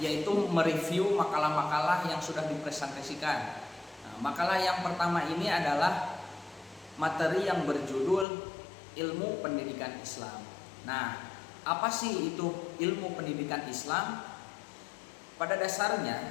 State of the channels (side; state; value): right; drops out; at 8.2 s